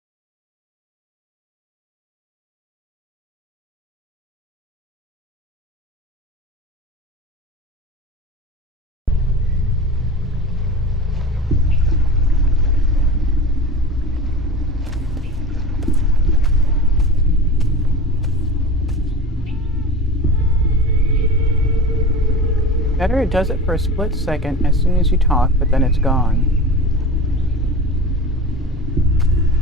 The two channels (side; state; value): both; normal; correlation 0.34